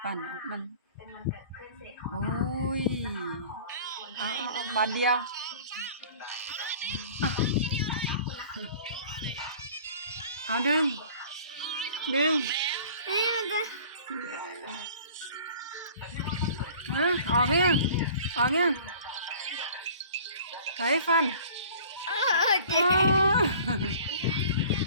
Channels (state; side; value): inverted; both; correlation -0.47